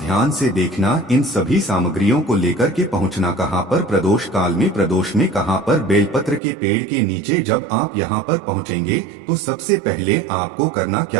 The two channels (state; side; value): drops out; left; at 6.4 s